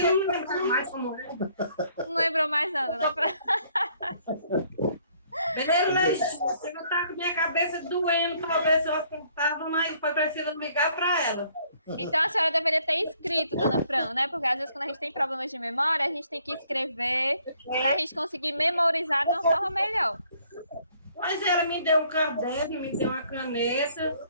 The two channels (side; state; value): both; inverted; correlation -0.64